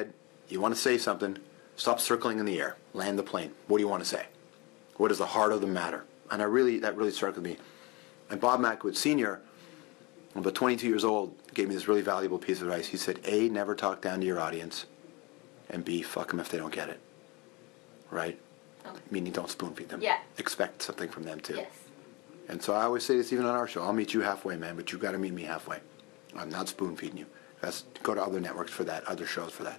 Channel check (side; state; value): right; quieter; 25.6 dB